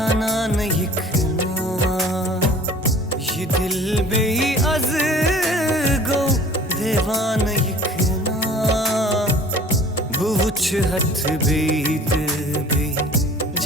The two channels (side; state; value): both; normal; correlation 0.47